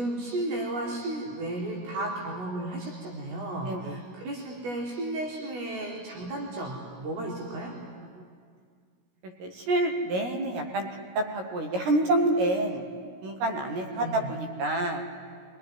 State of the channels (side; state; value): left; late; 16 ms